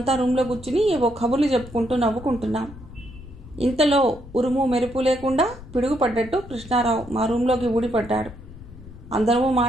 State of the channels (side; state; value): left; noise; rumble, 17 dB below the sound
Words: రూమ్లో కూర్చుని ఏవో కబుర్లు చెప్పుకుంటూ నవ్వుకుంటున్నాం. ఇంతలో ఉరుము మెరుపు లేకుండా పిడుగుపడ్డట్టు కృష్ణారావు మా రూమ్లోకి ఊడిపడ్డాడు. అందరము